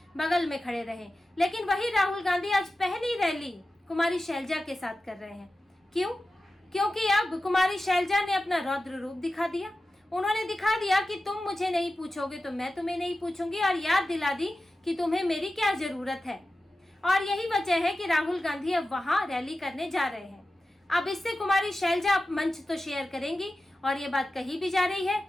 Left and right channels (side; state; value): both; normal; correlation 0.94